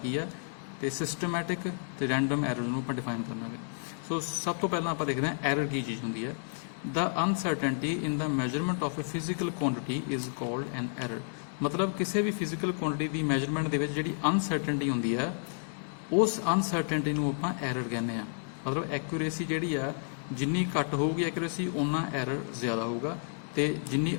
ਆ ਤੇ ਸਿਸਟਮੈਟਿਕ ਤੇ ਰੈਂਡਮ ਐਰਰ ਨੂੰ ਆਪਾਂ ਡਿਫਾਈਨ ਕਰਾਂਗੇ। ਸੋ ਸਭ ਤੋਂ ਪਹਿਲਾਂ ਆਪਾਂ ਦੇਖਦੇ ਹਾਂ ਐਰਰ ਕੀ ਚੀਜ਼ ਹੁੰਦੀ ਹੈ। The uncertainty in the measurement of a physical quantity is called an error. ਮਤਲਬ ਕਿਸੇ ਵੀ ਫਿਜ਼ੀਕਲ ਕੁਆਂਟਿਟੀ ਦੀ ਮੈਜਰਮੈਂਟ ਦੇ ਵਿੱਚ ਜਿਹੜੀ ਅਨਸਰਟਨਟੀ ਹੁੰਦੀ ਹੈ ਉਸ ਅਨਸਰਟਨਟੀ ਨੂੰ ਆਪਾਂ ਐਰਰ ਕਹਿੰਦੇ ਆ। ਮਤਲਬ ਐਕੂਰੇਸੀ ਜਿਹੜੀ ਆ ਜਿੰਨੀ ਘੱਟ ਹੋਊਗੀ ਐਕੂਰੇਸੀ ਓਨਾ ਐਰਰ ਜ਼ਿਆਦਾ ਹੋਊਗਾ, ਤੇ ਜਿੰਨੀ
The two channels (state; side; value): silent; right; digital silence